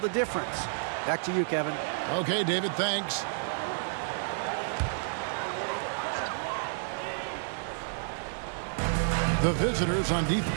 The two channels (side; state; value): left; silent; digital silence